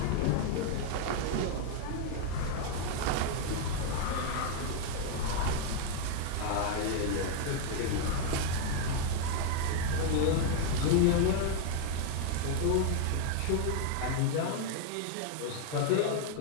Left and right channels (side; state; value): both; different; correlation 0.00